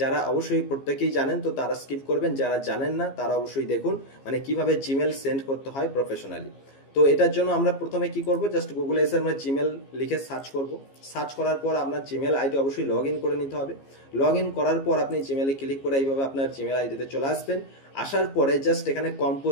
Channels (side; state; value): right; late; 15 ms